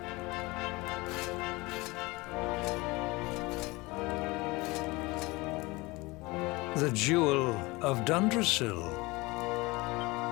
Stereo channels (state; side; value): quieter; right; 23.1 dB